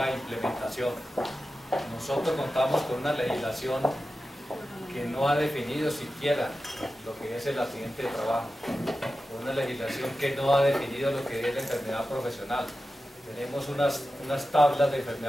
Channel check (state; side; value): normal; both; correlation 0.93